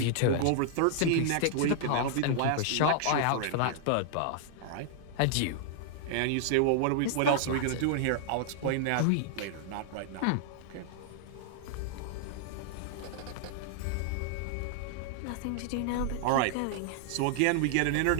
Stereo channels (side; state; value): both; different; correlation -0.01